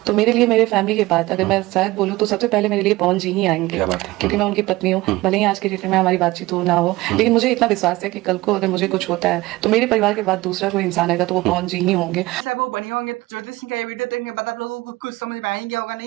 तो मेरे लिए मेरे फैमिली के बाद अगर मैं शायद बोलूँ तो सबसे पहले मेरे लिए पवन जी ही आएंगे, क्योंकि मैं उनकी पत्नी हूँ। भले ही आज के डेट में हमारी बातचीत हो ना हो, लेकिन मुझे इतना विश्वास है कि कल को अगर मुझे कुछ होता है तो मेरे परिवार के बाद दूसरा कोई इंसान आएगा तो वो पवन जी ही होंगे। सब वो बने होंगे। तो ज्योति सिंह का ये वीडियो देखने के बाद आप लोगों को कुछ समझ में आएंगे होगा,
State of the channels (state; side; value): quieter; left; 19.6 dB